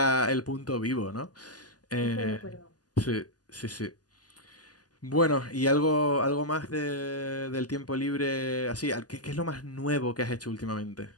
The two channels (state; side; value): late; right; 0.68 ms